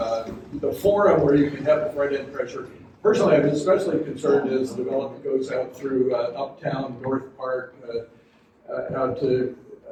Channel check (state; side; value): identical; both; correlation 1.00